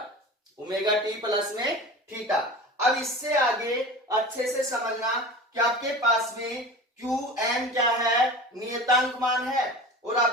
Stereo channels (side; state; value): both; normal; correlation 0.34